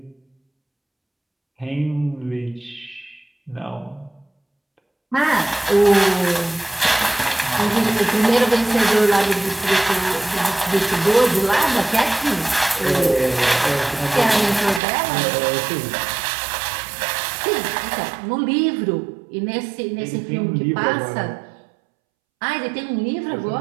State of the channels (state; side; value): drops out; left; at 14.8 s